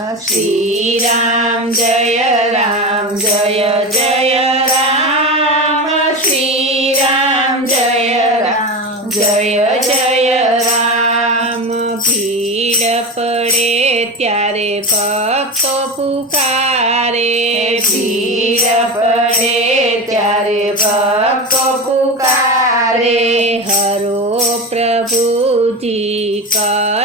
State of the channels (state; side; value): normal; both; correlation 0.23